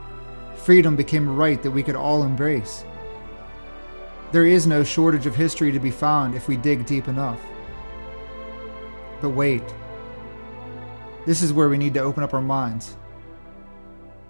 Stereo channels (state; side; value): inverted; both; correlation -1.00